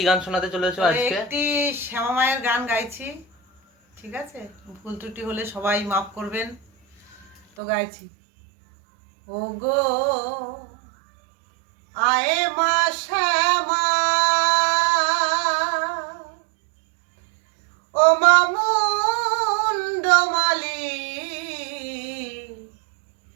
গান শোনাতে চলেছো তো আজকে? একটি শ্যামা মায়ের গান গাইছি, ঠিক আছে? ভুল ত্রুটি হলে সবাই মাফ করবেন। তো গাইছি, ও গো আয়ে মা শ্যামা, ও মামুন্ডমালি,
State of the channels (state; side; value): drops out; left; at 7.4 s